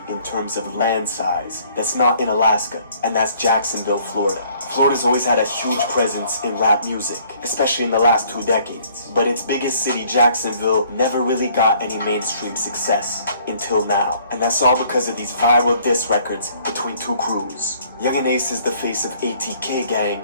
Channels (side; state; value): both; inverted; correlation -0.60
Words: in terms of land size. That's not in Alaska, and that's Jacksonville, Florida. Florida's always had a huge presence in rap music, especially in the last 2 decades. But its biggest city, Jacksonville, never really got any mainstream success until now. And that's all because of these viral diss records between two crews. Yungeen Ace is the face of ATK